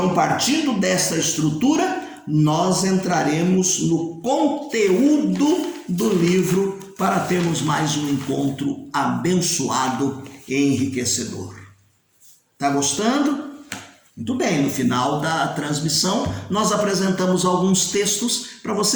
partindo dessa estrutura, nós entraremos no conteúdo do livro para termos mais um encontro abençoado e enriquecedor. Tá gostando? Muito bem, no final da transmissão nós apresentamos alguns textos para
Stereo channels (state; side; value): identical; both; correlation 1.00